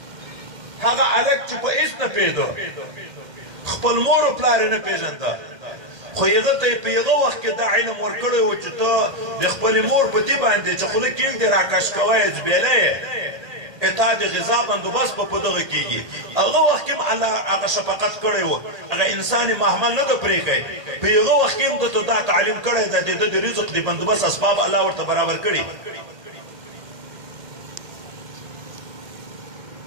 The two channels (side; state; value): left; late; 1.8 ms